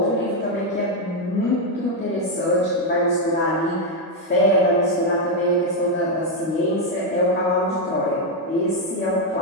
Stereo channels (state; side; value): normal; both; correlation 0.03